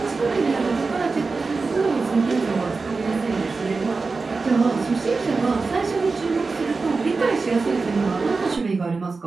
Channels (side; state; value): left; quieter; 4.2 dB